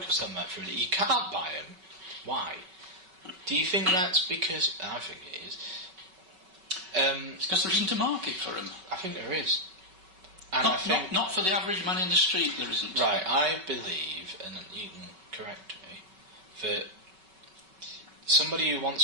on that for a minute. You can't buy them. Why? Do you think that's because? I think it is. It's because there isn't a market for them. I think there is. And not for the average man in the street. There isn't. Right. I believe, and you can correct me, that somebody who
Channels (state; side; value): late; left; 5.3 ms